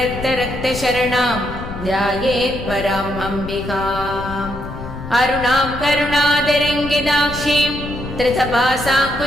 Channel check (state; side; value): noise; left; rumble, 10 dB below the sound